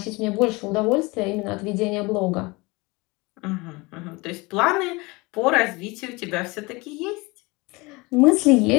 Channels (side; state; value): right; quieter; 24.5 dB